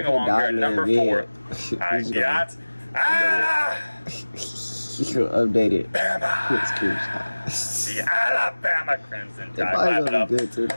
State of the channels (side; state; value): both; inverted; correlation -1.00